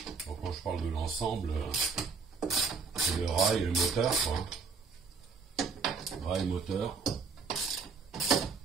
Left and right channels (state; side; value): quieter; left; 5.0 dB